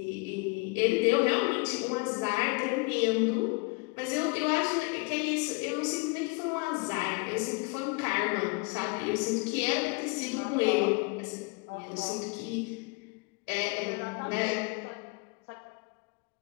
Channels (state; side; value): quieter; right; 29.3 dB